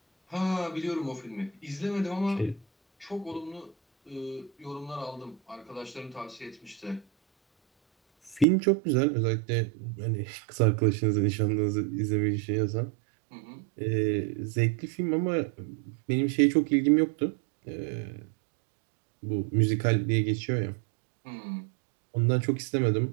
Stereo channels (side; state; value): left; drops out; at 8.5 s